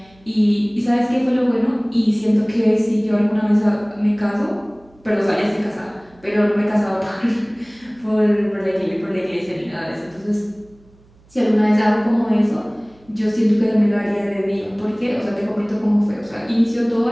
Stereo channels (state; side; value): noise; right; hum, 29 dB below the sound